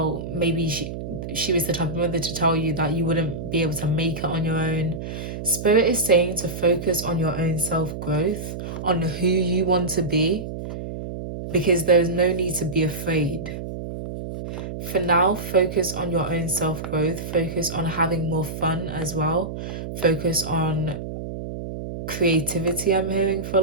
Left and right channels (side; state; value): right; noise; hum, 7 dB below the sound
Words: maybe she was the type of mother to tell you that you wouldn't be able to make it on your own. Spirit is saying to focus on your own self-growth, on who you want to be, because there's no need to be afraid. For now, focus on your own self-growth, focus on having more fun as well, focus on creativity. I'm hearing for a